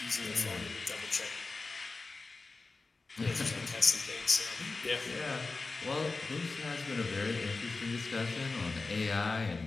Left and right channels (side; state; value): right; quieter; 3.8 dB